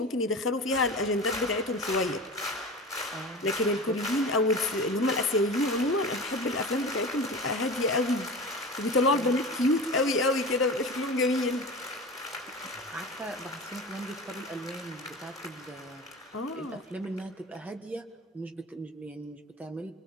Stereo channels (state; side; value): normal; both; correlation 0.32